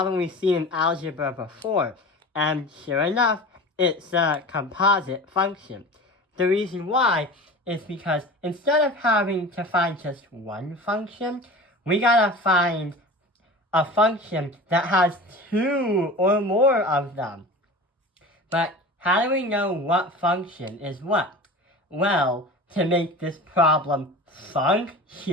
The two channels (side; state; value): both; normal; correlation 0.34